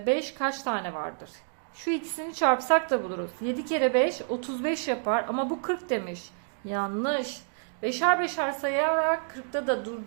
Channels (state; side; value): silent; left; digital silence